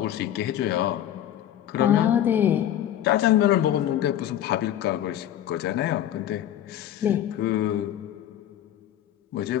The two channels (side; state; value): right; quieter; 11.4 dB